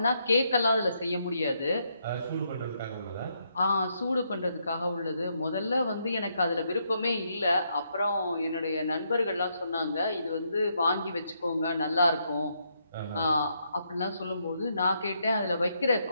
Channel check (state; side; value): inverted; both; correlation -0.77